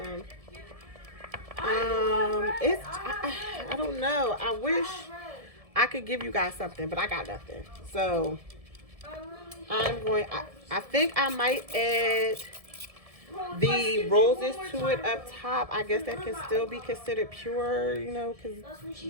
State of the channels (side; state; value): left; late; 1.7 ms